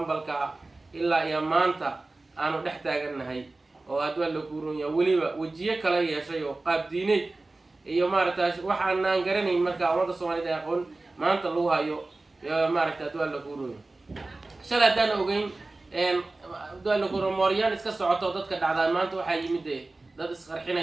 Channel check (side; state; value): left; quieter; 3.2 dB